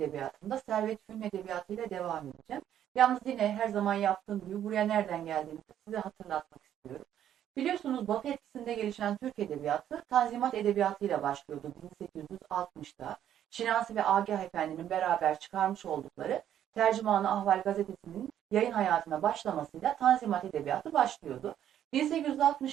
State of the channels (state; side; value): quieter; left; 10.6 dB